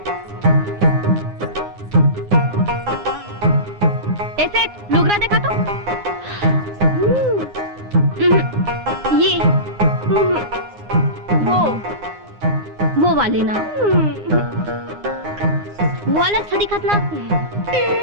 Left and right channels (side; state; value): left; late; 9.7 ms